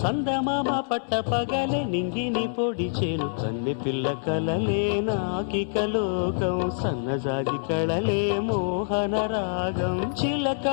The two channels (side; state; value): right; silent; digital silence